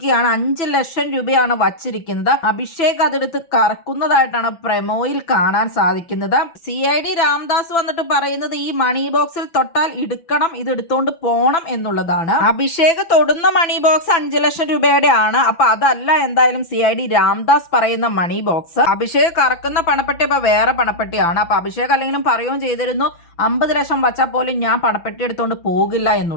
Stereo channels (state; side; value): late; right; 6.0 ms